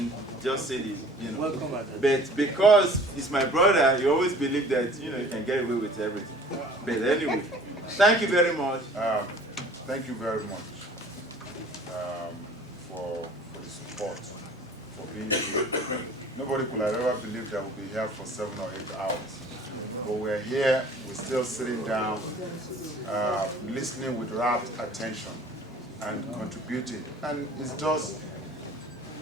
just say this, But because he's my brother, you always believe that, you can get away with everything. But anyway, thank you very much. Thank you very much for the support, for being here. Nobody could have ever believed that we'll be here for 7 or 8 hours. But we're here, we're still sitting down, listening with rapt attention and contributing. And it's just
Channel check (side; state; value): both; normal; correlation 0.48